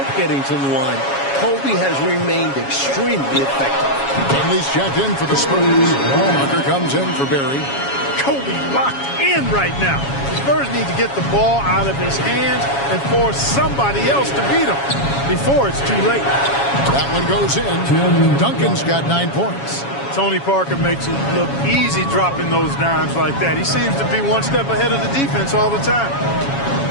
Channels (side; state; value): right; late; 7.2 ms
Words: getting to the line, Kobe has remained extremely effective. Henley's checked in for the Spurs. Walker comes in for Barry. Kobe locked in right now. The Spurs need to get the ball out of his hands and force somebody else to beat him before it's too late. That one goes in. Duncan's got 9 points. Tony Parker makes it look easy dropping those dimes like that. He seems to be one step ahead of the defense all the time.